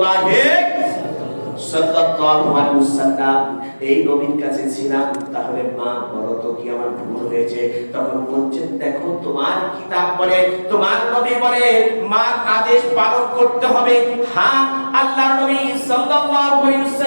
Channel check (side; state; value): both; inverted; correlation -1.00